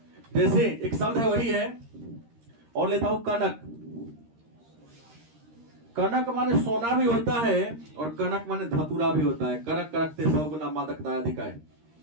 जैसे एक शब्द है वही है, और लेता हूं कनक। कनक माने सोना भी होता है और कनक माने धतूरा भी होता है। कनक कनकते 100 गुना मादकता अधिक है।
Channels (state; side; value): late; left; 13 ms